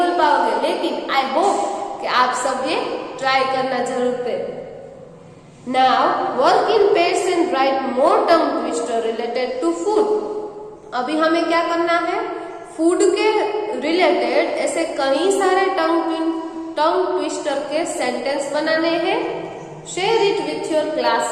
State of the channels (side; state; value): both; identical; correlation 1.00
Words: पाओगे, लेकिन आई होप कि आप सब ये ट्राई करना जरूर करें. Now work in pairs and write more tongue twister related to food. अभी हमें क्या करना है? फूड के रिलेटेड ऐसे कई सारे टंग ट्विस्टर के सेंटेंस बनाने हैं. Share it with your